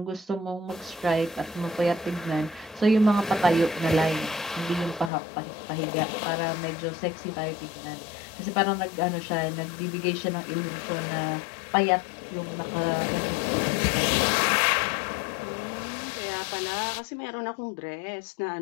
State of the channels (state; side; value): drops out; right; at 5.1 s